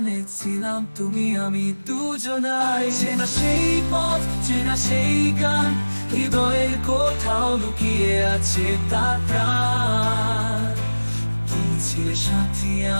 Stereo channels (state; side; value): inverted; both; correlation -1.00